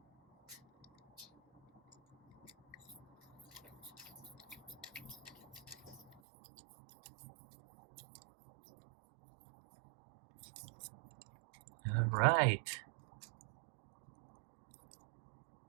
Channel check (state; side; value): drops out; left; at 6.2 s